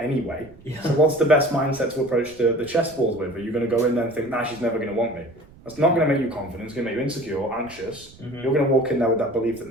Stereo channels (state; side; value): noise; right; rumble, 23 dB below the sound